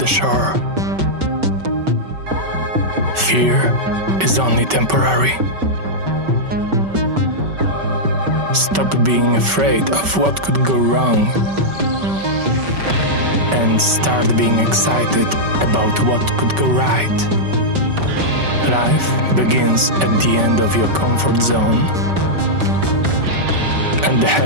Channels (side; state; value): left; late; 5.2 ms